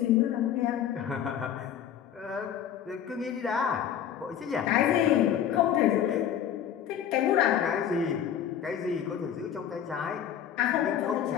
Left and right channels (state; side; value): quieter; right; 9.5 dB